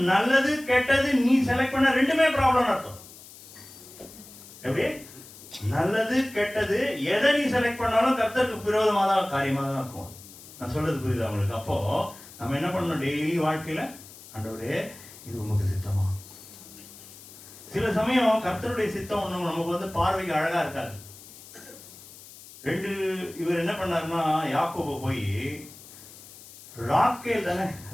நல்லது கெட்டது நீ செலக்ட் பண்ண ரெண்டுமே ப்ராப்ளம் அர்த்தம். எப்படி? நல்லது கெட்டது எதை நீ செலக்ட் பண்ணாலும் கர்த்தருக்கு விரோதமாக தான் காரியமாக தான் இருக்கும். நான் சொல்றது புரியுதா உங்களுக்கு? அப்போ நம்ம என்ன பண்ணணும்? டெய்லி வாழ்க்கையில ஆண்டவரே இது உமக்கு சித்தமா? சில சமயம் கர்த்தருடைய சித்தம் ஒண்ணு நமக்கு வந்து பார்வைக்கு அழகா இருக்காது. இவர் என்ன பண்ணாருன்னா, யாக்கோபு போய் ராக்கேல்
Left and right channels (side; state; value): left; noise; hiss, 18 dB below the sound